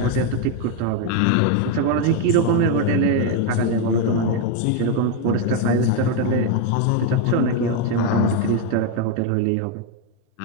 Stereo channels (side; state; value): both; different; correlation 0.02